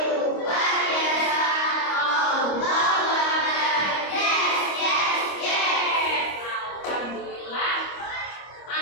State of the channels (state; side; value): late; right; 25 ms